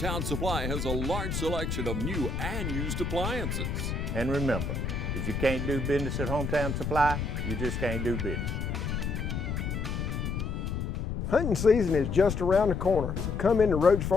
Supply has a large selection of new and used appliances. And remember, if you can't do business at Hometown Supply, you just can't do business. Hunting season is just around the corner, so come into Roach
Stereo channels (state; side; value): noise; left; rumble, 3 dB below the sound